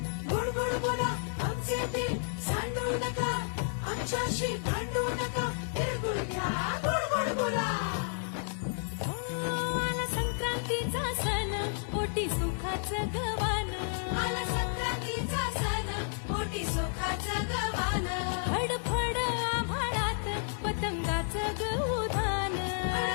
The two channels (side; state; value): right; silent; digital silence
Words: गोड गोड बोला आमचे ते सांडू नका आमच्याशी भांडू नका तिळगुळ घ्या गोड गोड बोला आला संक्रांतीचा सण पोटी सुखाचं गवान आला संक्रांतीचा सण मोठी सुखाचं गवान फडफड आभाळात पतंगाचं गहुधान